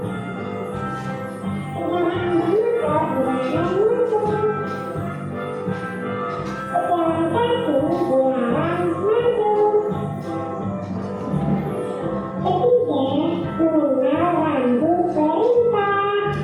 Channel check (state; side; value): identical; both; correlation 1.00